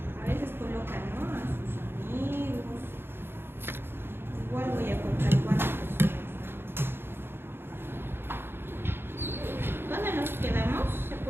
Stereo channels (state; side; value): late; left; 0.11 ms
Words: A veces colocan, ¿no?, a sus amigos. Igual voy a contar cuántas personas. ¿Dónde nos quedamos? ¿Se